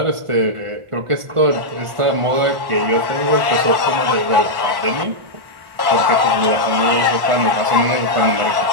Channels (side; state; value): left; late; 1.1 ms